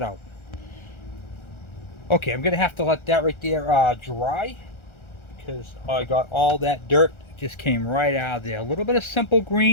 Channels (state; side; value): late; right; 1.4 ms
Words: out. Okay, I'm going to have to let that right there dry, because I got all that dirt just came right out of there. A little bit of simple